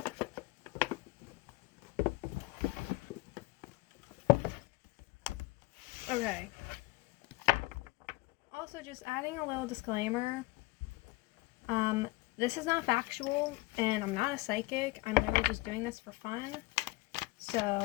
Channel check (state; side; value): quieter; right; 21.3 dB